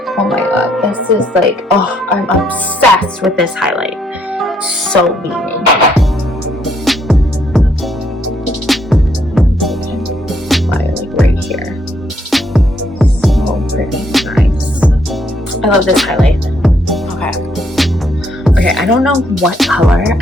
Oh my god, this is like, oh, I'm obsessed with this highlight. So beaming. Like right here. So pretty, nice. I love this highlight. Okay, I don't know what color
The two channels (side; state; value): both; normal; correlation 0.71